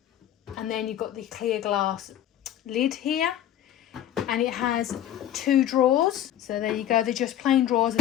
And then you've got the clear glass lid here. And it has 2 drawers, so there you go. They're just plain drawers,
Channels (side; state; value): right; quieter; 11.4 dB